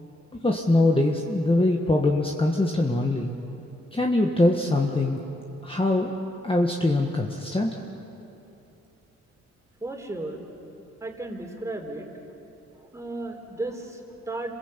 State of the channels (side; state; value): both; normal; correlation 0.81